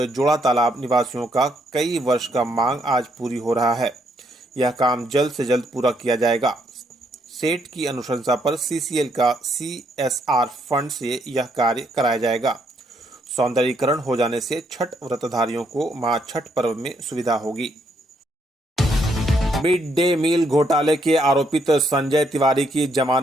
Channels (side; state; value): both; normal; correlation 0.73